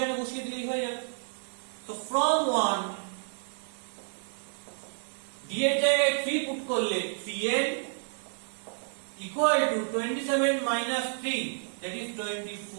বসিয়ে দিলেই হয়ে যাবে। So from 1 d এর জায়গায় 3 পুট করলে 3n equal to 27 minus 3, that is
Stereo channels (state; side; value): silent; left; 58 dB below the other